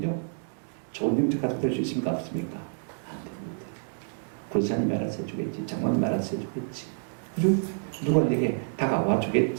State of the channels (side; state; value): left; silent; digital silence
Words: 좋은 영적 가족 될 수 있습니까? 없습니까? 안 됩니다. 권사님이 알아서 해주겠지, 장관님이 알아서 해주겠지, 그죠? 누가 내게 다가와